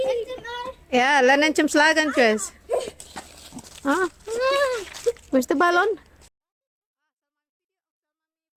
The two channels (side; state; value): both; identical; correlation 1.00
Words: Ja, laat hem slagen, Chris. Push the ballon.